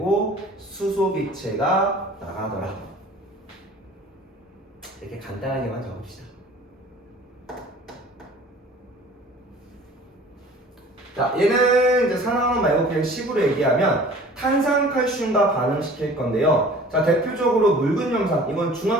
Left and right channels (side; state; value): both; normal; correlation 0.47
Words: 수소 기체가 나가더라. 이렇게 간단하게만 적읍시다. 자, 얘는 이제 산화환원 말고 그냥 식으로 얘기하면 탄산칼슘과 반응시킬 건데요. 자, 대표적으로 묽은 염산. 이건